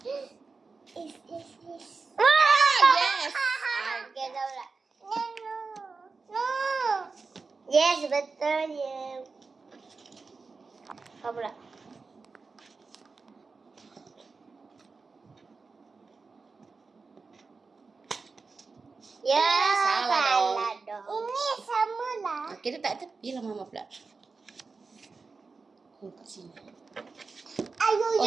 Is. Yes. Okey, dah pula. No. Yes, betul je. Apa pula? Ya, salah dong. Ini sama lah. Okey, letak tepi lah Mama pula. Kat sini. Ayo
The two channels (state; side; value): quieter; left; 4.4 dB